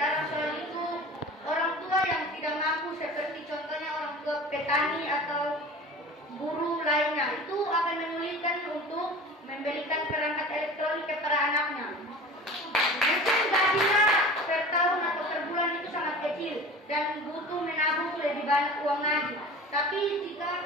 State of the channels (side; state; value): both; normal; correlation 0.38